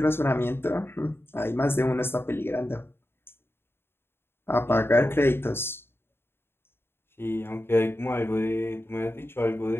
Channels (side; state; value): right; late; 0.11 ms